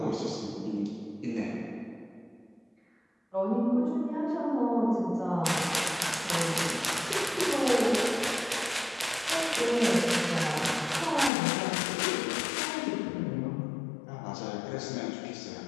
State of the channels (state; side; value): drops out; right; at 11.3 s